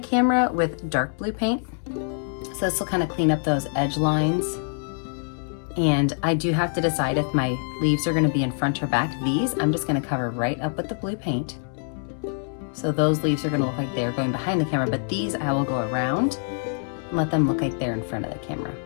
with dark blue paint, so this will kind of clean up those edge lines. And I do have to decide if my leaves are going to be in front or back. These I'm just going to cover right up with the blue paint, so those leaves are going to look like they're going behind the camera, but these I will go around and let them look like they're in front of the camera.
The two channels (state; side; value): silent; right; 62 dB below the other